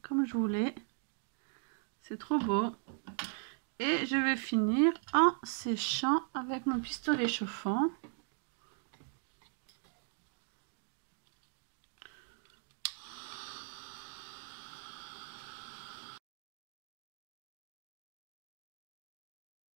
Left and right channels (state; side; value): silent; left; 52 dB below the other